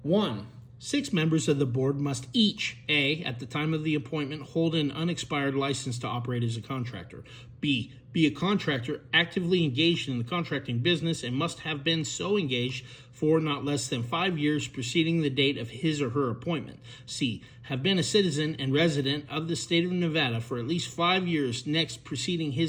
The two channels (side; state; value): both; identical; correlation 1.00